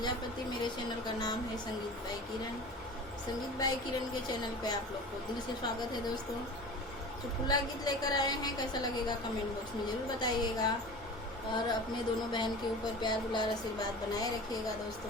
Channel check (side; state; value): both; normal; correlation 0.36